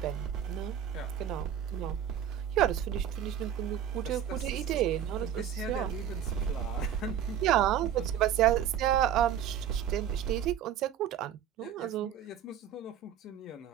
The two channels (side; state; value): left; quieter; 9.6 dB